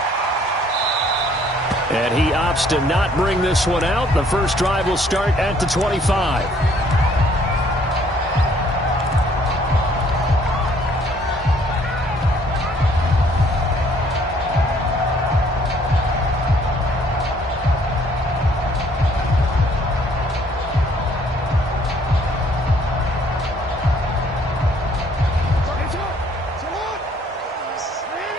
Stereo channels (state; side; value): normal; both; correlation 0.62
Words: And he opts to not bring this one out. The first drive will start at the 25.